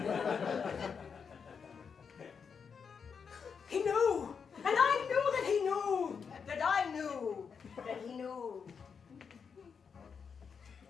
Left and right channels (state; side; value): quieter; right; 6.2 dB